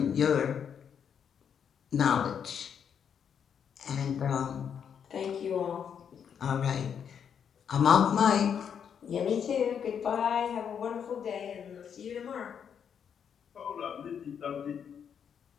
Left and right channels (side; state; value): right; quieter; 7.8 dB